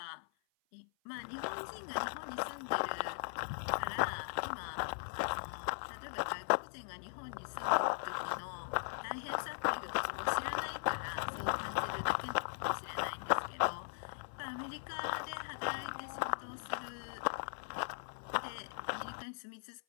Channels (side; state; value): right; silent; 52 dB below the other